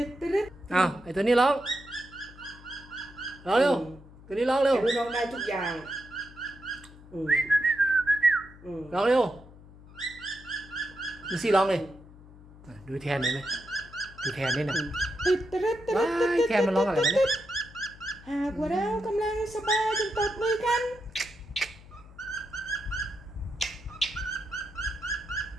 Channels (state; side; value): noise; left; hum, 20 dB below the sound